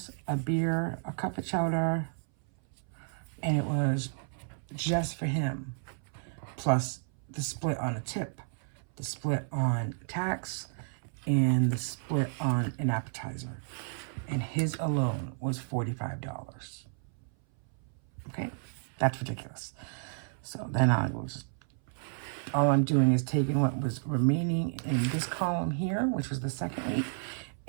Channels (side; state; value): left; silent; 57 dB below the other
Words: a beer, a cup of chowder, and it was just for him, plus the split on a tip, the split on tax, and the split on an appetizer. And his alone was $45. Okay? That's ridiculous. So then I was, all I'm doing is taking what was remaining in this column here, which was the second week,